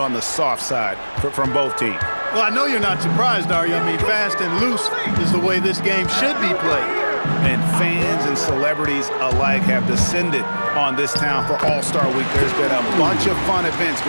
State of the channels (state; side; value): inverted; both; correlation -1.00